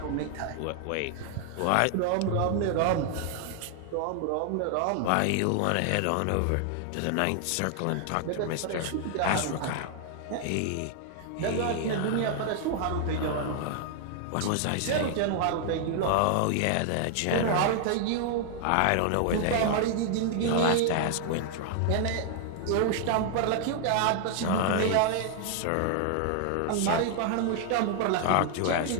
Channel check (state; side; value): different; both; correlation 0.00